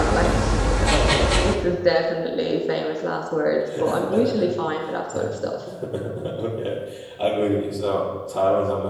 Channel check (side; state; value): both; identical; correlation 1.00